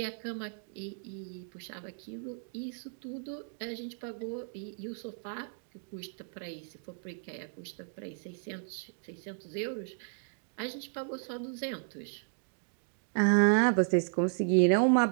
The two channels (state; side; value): silent; left; digital silence